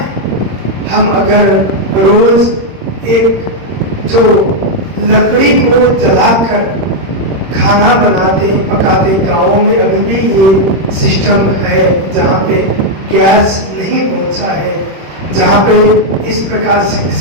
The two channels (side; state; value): left; late; 26 ms